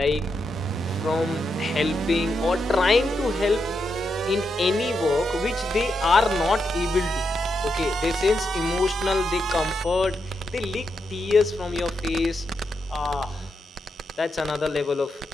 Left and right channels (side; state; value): both; normal; correlation 0.84